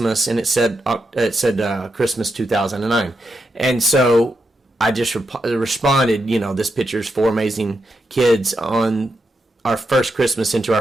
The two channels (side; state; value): both; normal; correlation 0.85